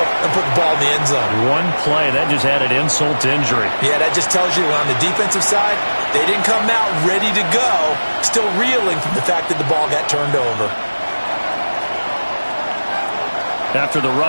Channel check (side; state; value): both; inverted; correlation -1.00